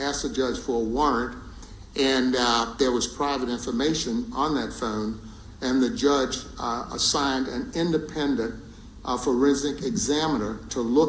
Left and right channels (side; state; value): both; identical; correlation 1.00